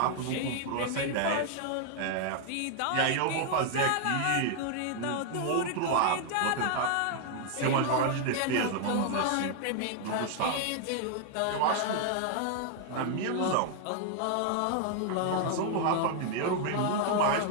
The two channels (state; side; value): different; both; correlation 0.00